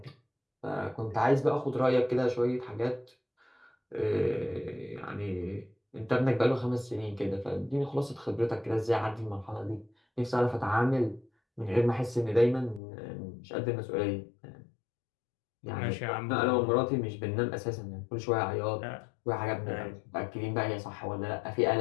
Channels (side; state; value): right; drops out; at 12.8 s